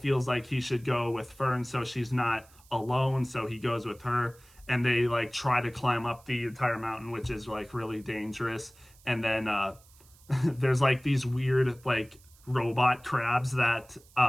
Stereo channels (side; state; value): right; noise; hiss, 27 dB below the sound